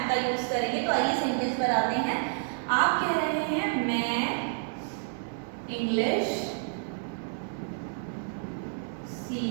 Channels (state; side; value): silent; left; digital silence